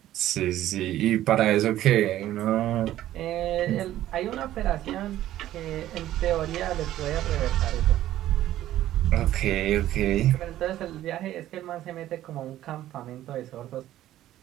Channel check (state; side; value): quieter; left; 13.4 dB